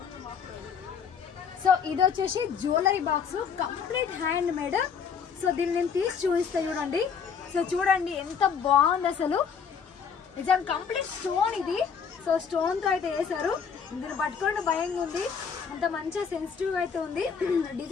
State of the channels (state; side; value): quieter; right; 6.6 dB